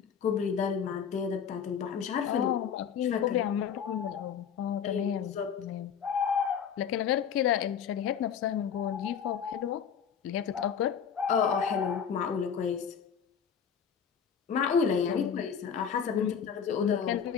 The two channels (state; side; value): quieter; right; 7.5 dB